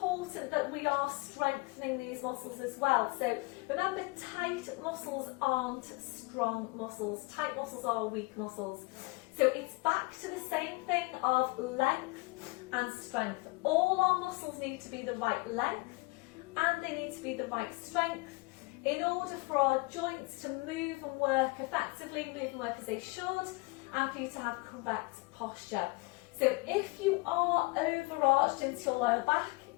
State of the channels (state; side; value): quieter; right; 26.2 dB